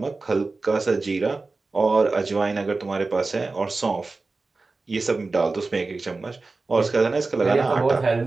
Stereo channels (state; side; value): quieter; left; 3.7 dB